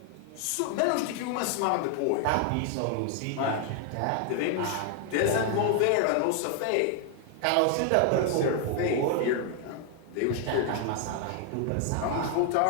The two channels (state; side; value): different; both; correlation 0.00